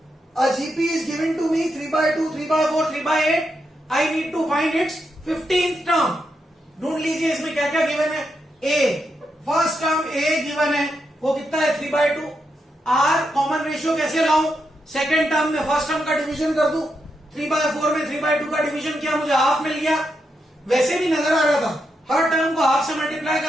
A GP is given to me 3 by 2, 3 by 4, 3 by 8. I need to find its 15th term. ढूंढ लीजिए इसमें क्या क्या गिवन है. A first term A given है, वो कितना है 3 by 2. R कॉमन रेशियो कैसे लाऊं? सेकेंड टर्म में फर्स्ट टर्म का डिवीजन कर दूं. 3 by 4 में 3 by 2 का डिवीजन किया, मुझे हाफ मिल गया. वैसे भी नजर आ रहा था हर टर्म को हाफ से मल्टीप्लाई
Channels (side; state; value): both; normal; correlation 0.84